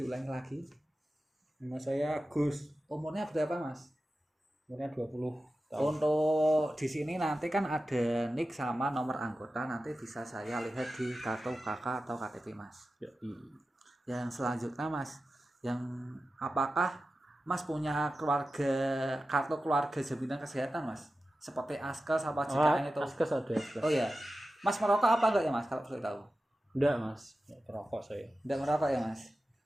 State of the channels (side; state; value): both; normal; correlation 0.93